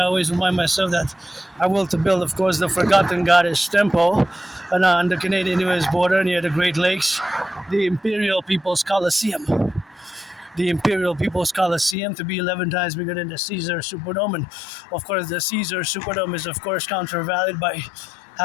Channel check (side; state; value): right; drops out; at 12.0 s